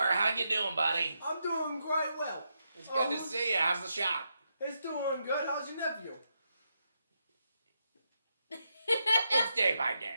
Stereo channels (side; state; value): both; inverted; correlation -0.83